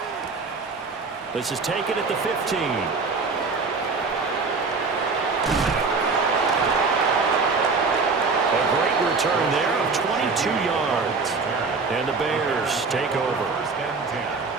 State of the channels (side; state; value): left; quieter; 4.4 dB